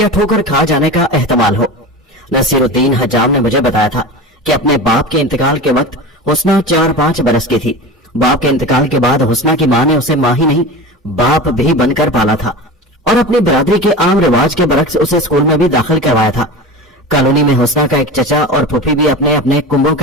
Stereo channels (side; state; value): both; normal; correlation 0.30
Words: ठोकर खा जाने का एहतमाल हो। नसीरुद्दीन हजाम ने मुझे बताया था कि अपने बाप के इंतकाल के वक्त हुस्ना 4-5 बरस की थी। बाप के इंतकाल के बाद हुस्ना की माँ ने उसे माँ ही नहीं बाप भी बनकर पाला था और अपनी बरादरी के आम रिवाज के बरक्स उसे स्कूल में भी दाखिल करवाया था। कॉलोनी में हुस्ना का एक चचा और फूफी भी अपने अपने कुंभों